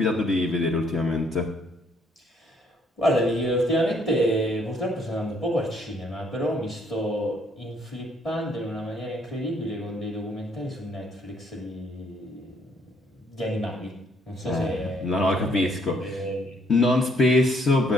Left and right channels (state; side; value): normal; both; correlation 0.67